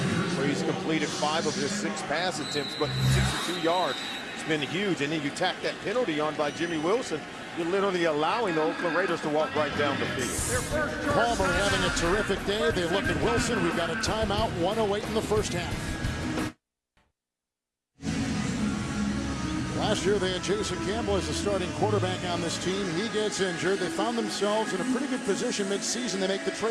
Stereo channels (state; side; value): identical; both; correlation 1.00